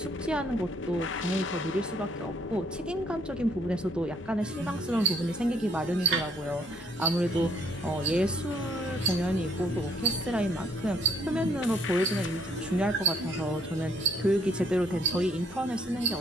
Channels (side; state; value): both; normal; correlation 0.65